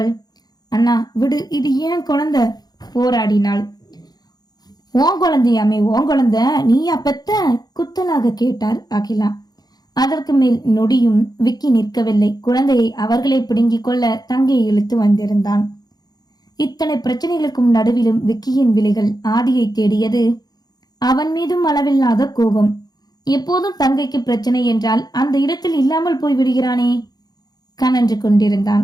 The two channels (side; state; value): right; late; 0.19 ms